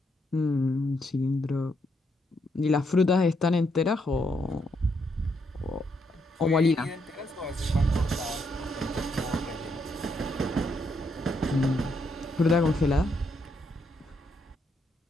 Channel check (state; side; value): normal; both; correlation 0.77